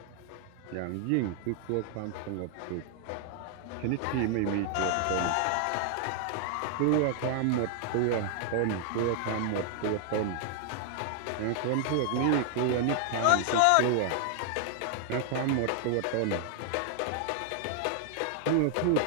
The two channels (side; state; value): both; different; correlation 0.00